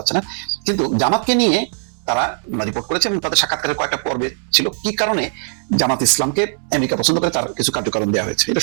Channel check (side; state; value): left; silent; 64 dB below the other